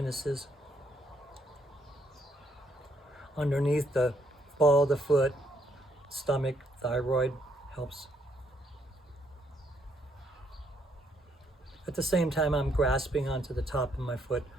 Underneath the ball of the foot, stomach, thyroid, helps. At the same time, I'm grasping onto the top of my foot,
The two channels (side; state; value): both; normal; correlation 0.72